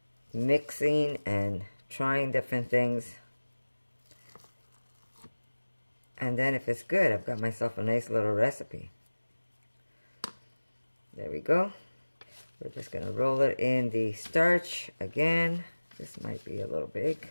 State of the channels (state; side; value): inverted; both; correlation -1.00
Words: mixing and trying different things. And then if it's good, I've got myself a nice little recipe. There we go. We're just going to roll it in the starch again. This might be a little